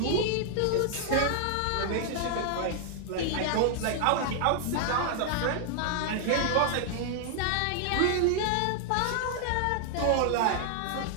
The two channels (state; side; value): different; both; correlation 0.00